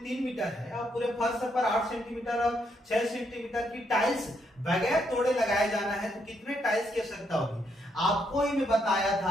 3 मीटर है और पूरे फर्श पर 8 सेंटीमीटर और 6 सेंटीमीटर की टाइल्स बगैर तोड़े लगाए जाना है, तो कितने टाइल्स की आवश्यकता होगी। आपको ही मैं बताया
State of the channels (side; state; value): both; normal; correlation 0.76